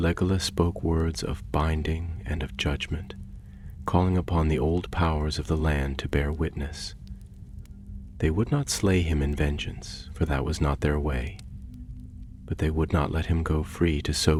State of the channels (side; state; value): both; identical; correlation 1.00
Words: spoke words of binding and of judgment, calling upon the old powers of the land to bear witness. They would not slay him in vengeance, for that was not their way, but they would not let him go free to